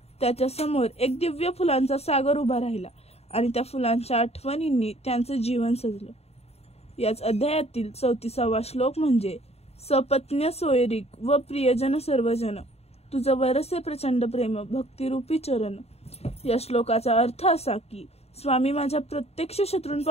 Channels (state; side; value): late; right; 0.30 ms